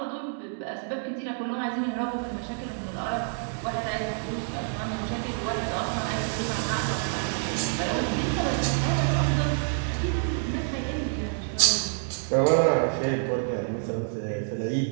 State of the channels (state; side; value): silent; left; 60 dB below the other